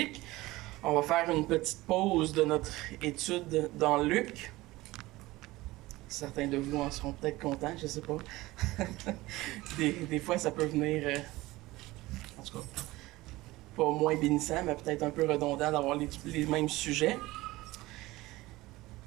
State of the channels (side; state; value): left; quieter; 19.1 dB